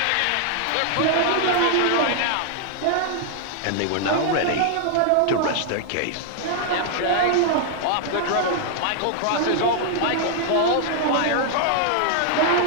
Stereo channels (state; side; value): different; both; correlation -0.01